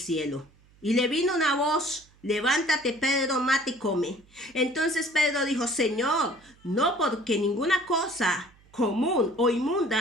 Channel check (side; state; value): right; noise; hum, 29 dB below the sound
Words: Y le vino una voz, levántate, Pedro, mate y come. Entonces Pedro dijo, Señor, no, porque ninguna cosa común o